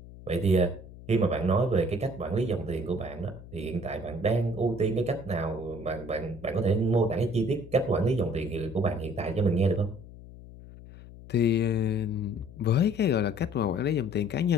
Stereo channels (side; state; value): left; noise; hum, 17 dB below the sound